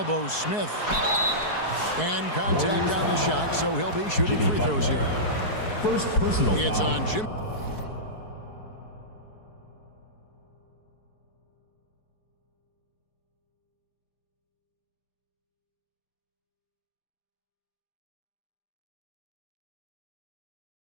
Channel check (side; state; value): right; late; 4.7 ms